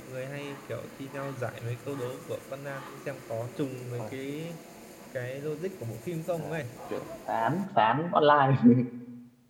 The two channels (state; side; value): identical; both; correlation 1.00